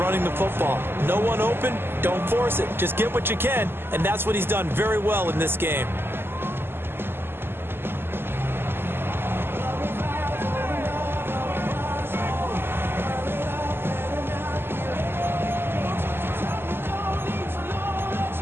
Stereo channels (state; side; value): late; left; 0.11 ms